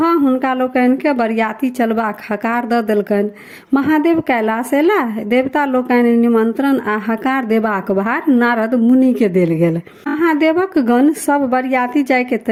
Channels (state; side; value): identical; both; correlation 1.00